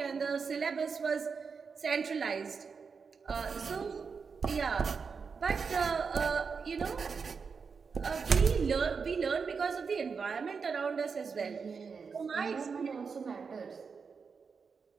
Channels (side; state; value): left; quieter; 5.5 dB